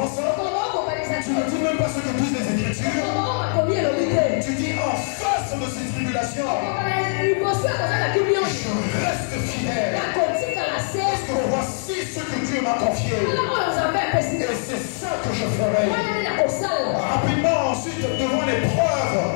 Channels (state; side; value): silent; right; digital silence